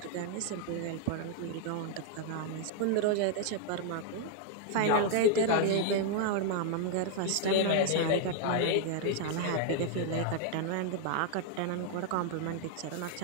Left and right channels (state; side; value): different; both; correlation 0.00